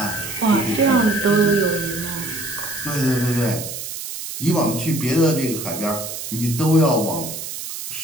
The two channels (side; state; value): right; noise; hiss, 8 dB below the sound